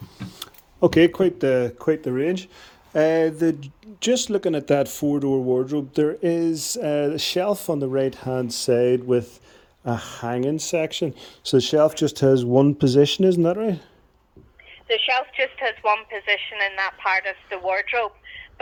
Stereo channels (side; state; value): both; identical; correlation 1.00